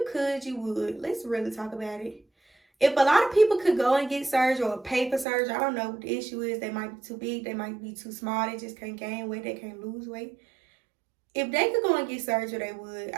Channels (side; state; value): left; drops out; at 5.2 s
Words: could, you would. Let's really talk about it. If a lot of people could go and get surgery or pay for surgery, I don't know what the issue is. They might be too big. They might be too small. They just can't gain weight. They can't lose weight. If they could go and get surgery, they would.